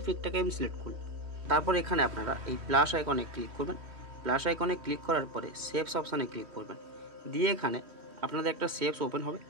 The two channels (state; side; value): late; left; 3.1 ms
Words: পিকটাকে আমি সিলেক্ট করলাম। তারপর এখানে আপনারা এই প্লাস আইকনে ক্লিক করবেন। প্লাস আইকনে ক্লিক করার পরে শেপস অপশানে ক্লিক করবেন, দিয়ে এখানে আপনাদের একটা শেপস ওপেন হবে।